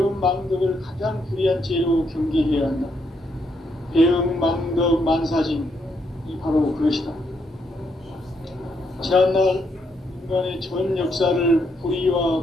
망덕을 가장 불의한 죄로 경계해야 한다. 배음 망덕 만사징이 바로 그것이다. 지난날 인간의 전 역사를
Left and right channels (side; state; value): both; normal; correlation 0.76